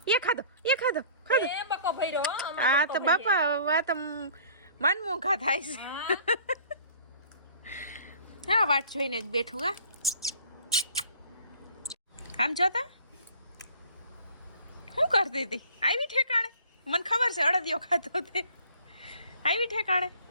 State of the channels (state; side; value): inverted; both; correlation -0.51